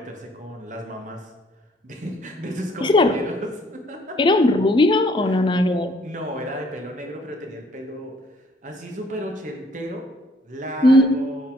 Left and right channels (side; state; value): both; normal; correlation 0.62